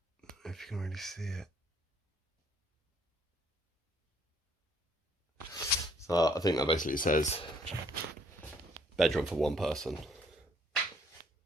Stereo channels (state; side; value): normal; both; correlation 0.64